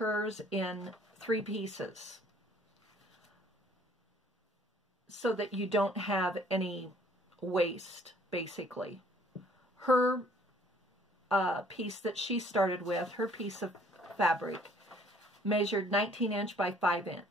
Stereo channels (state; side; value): normal; both; correlation 0.59